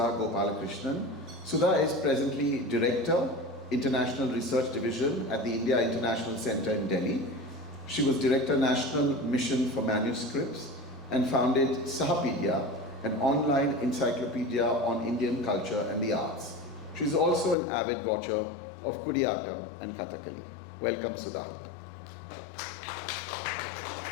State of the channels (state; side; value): drops out; right; at 17.6 s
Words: Gopalakrishnan. Sudha is presently Director, International Research Division at the India International Center in Delhi. She was Director National Mission for Manuscripts and founded Sahapedia, an online encyclopedia on Indian culture and the arts. She is also an avid watcher of Kutiyattam and Kathakali. Welcome, Sudha. Thank you.